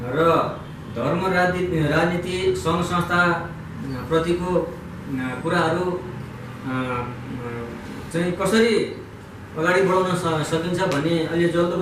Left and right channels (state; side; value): identical; both; correlation 1.00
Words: र धर्म राजनीति सङ्घ संस्था प्रतिको कुराहरू चाहिँ कसरी अगाडि बढाउन सकिन्छ भन्ने अलि